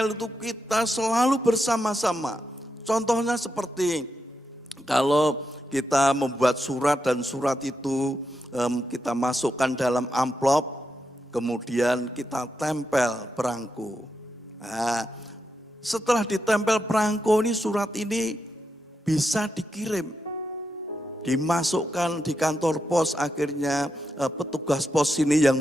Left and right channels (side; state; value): both; normal; correlation 0.85